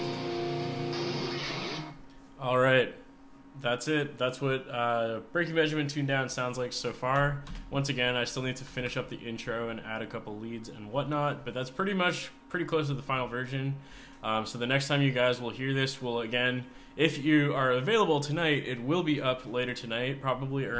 All right. That's it. That's what Breaking Benjamin tuned down sounds like so far. Once again, I still need to finish up the intro and add a couple leads and whatnot, but that's pretty close to the final version. So the next time you guys will hear this will, again, if you are available tonight, it will be up later tonight, probably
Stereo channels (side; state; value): both; identical; correlation 1.00